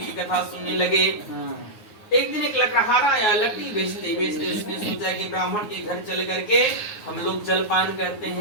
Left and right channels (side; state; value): right; late; 9.5 ms